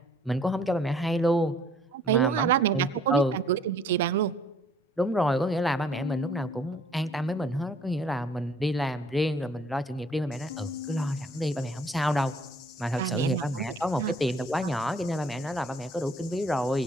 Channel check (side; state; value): both; normal; correlation 0.59